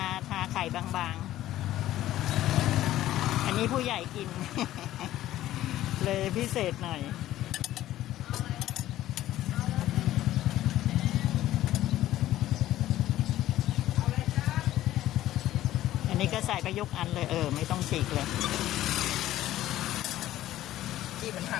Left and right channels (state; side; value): quieter; right; 14.0 dB